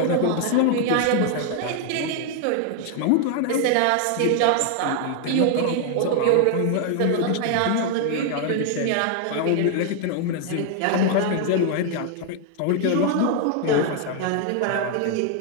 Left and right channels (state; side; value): different; both; correlation 0.00